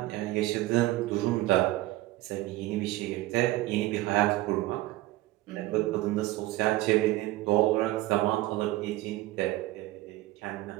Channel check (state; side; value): quieter; left; 17.6 dB